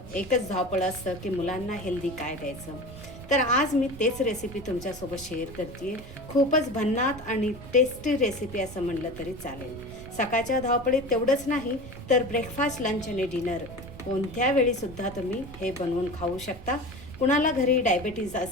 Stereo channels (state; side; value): noise; right; rumble, 16 dB below the sound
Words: एकच धावपळ असतं की मुलांना हेल्दी काय द्यायचं. तर आज मी तेच रेसिपी तुमच्यासोबत शेअर करते. खूपच भन्नाट आणि टेस्टी रेसिपी असं म्हणलं तरी चालेल. सकाळच्या धावपळीत तेवढंच नाही तर ब्रेकफास्ट, लंच आणि डिनर कोणत्या वेळीसुद्धा तुम्ही हे बनवून खाऊ शकता. कुणाला घरी डायबिटीज